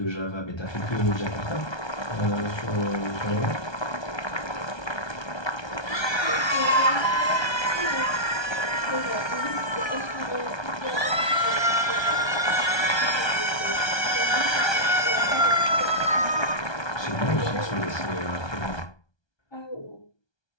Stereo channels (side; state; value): right; late; 1.2 ms